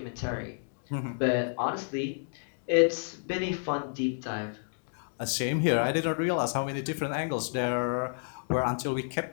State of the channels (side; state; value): right; silent; digital silence